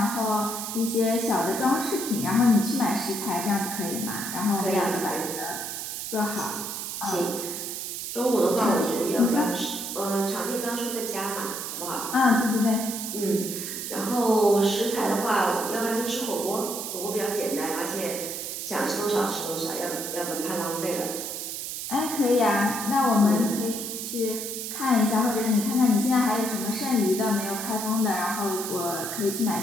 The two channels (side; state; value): right; noise; hiss, 5 dB below the sound